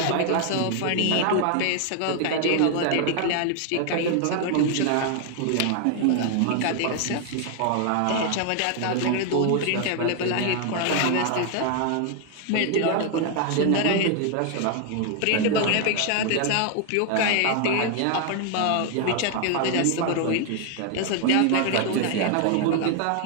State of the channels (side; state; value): both; different; correlation 0.00